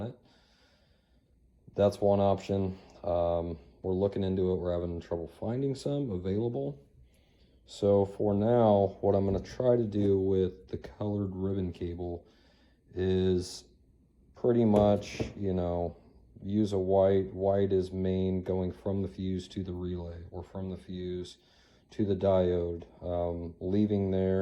it. That's one option. We're looking into it. We're having trouble finding some available. So for now, what I'm going to try to do with the colored ribbon cable is pretty much, you know, use a white. White is main, going from the fuse to the relay, or from the fuse to the diode. Leaving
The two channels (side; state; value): both; identical; correlation 1.00